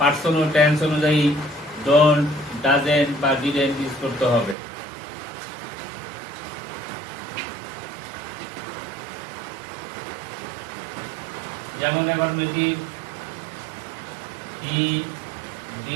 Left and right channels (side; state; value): left; drops out; at 4.5 s